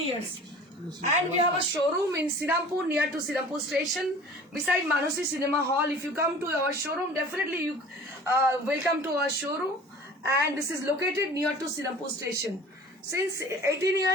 years. And we have a showroom in Sirampur, near to Sirampur station, beside Manosi Cinema Hall. If you come to our showroom, definitely you welcome to our showroom. And this is located near to Sirampur station. Since 18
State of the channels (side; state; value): both; normal; correlation 0.44